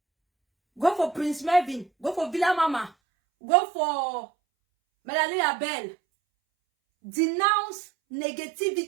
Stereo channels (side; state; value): left; drops out; at 2.9 s